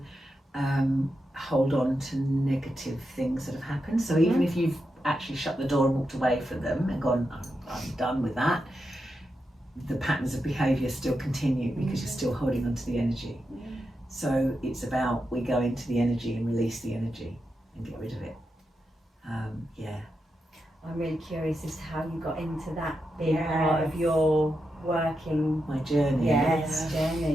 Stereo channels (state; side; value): normal; both; correlation 0.87